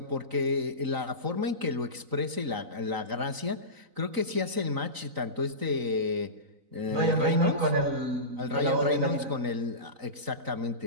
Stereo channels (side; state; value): left; late; 3.9 ms